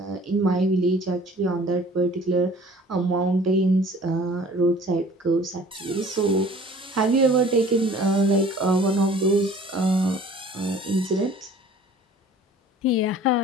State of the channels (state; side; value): normal; both; correlation 0.49